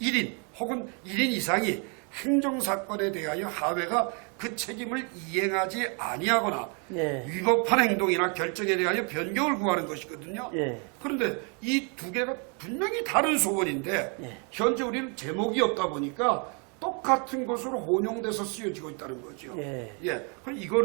1인 혹은 1인 이상이 행정사건에 대하여 하회가 그 책임을 이행하지 아니하거나 예. 위법한 행동이나 결정에 대하여 변경을 구하는 것이거든요. 예. 그런데 이 두 개가 분명히 다른 소원인데 예. 현재 우리는 제목이 없다 보니까 똑같은 것으로 혼용돼서 쓰여지고 있다는 거죠. 예. 그럼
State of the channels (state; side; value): quieter; left; 36.6 dB